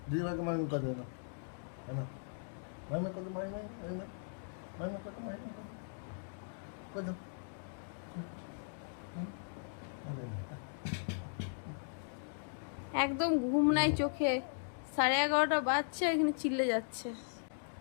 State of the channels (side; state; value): right; silent; digital silence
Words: দিদি ভাইকে মাই মাই করে দাও। না মাই মাই করতে মাই মাই মাই মাই মাই মাই করতে মাই মাই করে দাও। একদম ঘুম নাই চোখে, 11:30 বাজছে, এখানে চিল্লে যাচ্ছে।